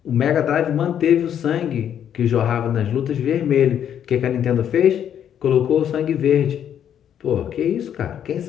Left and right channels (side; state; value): right; quieter; 9.4 dB